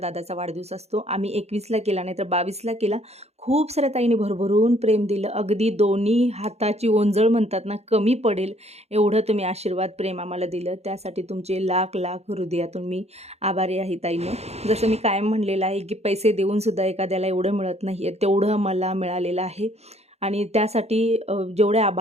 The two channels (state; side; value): late; left; 0.31 ms